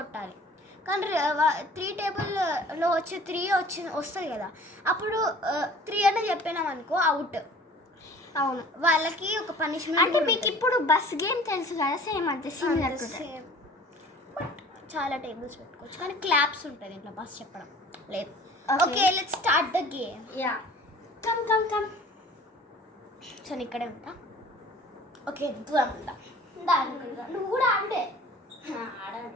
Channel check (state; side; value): normal; both; correlation 0.47